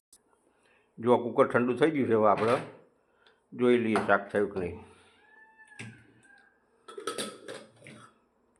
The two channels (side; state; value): both; identical; correlation 1.00